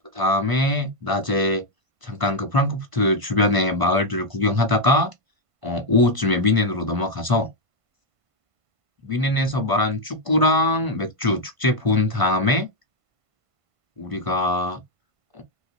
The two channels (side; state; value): left; late; 1.5 ms